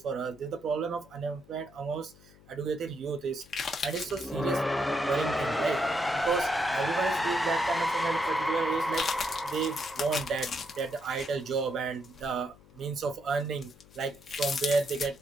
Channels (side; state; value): left; noise; hum, 24 dB below the sound